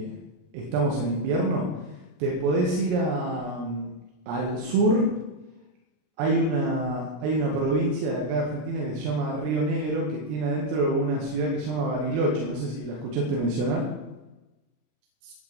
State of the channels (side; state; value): left; late; 33 ms